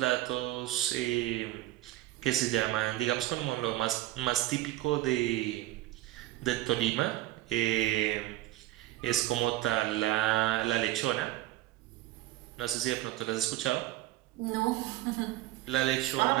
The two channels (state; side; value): quieter; left; 16.1 dB